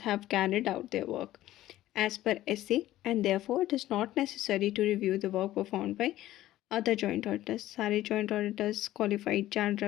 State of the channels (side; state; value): right; quieter; 14.7 dB